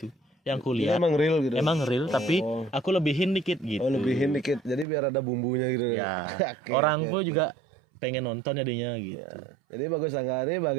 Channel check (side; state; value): left; drops out; at 4.9 s